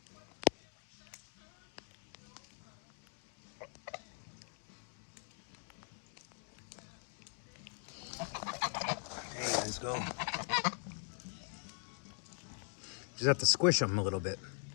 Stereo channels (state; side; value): silent; right; 50 dB below the other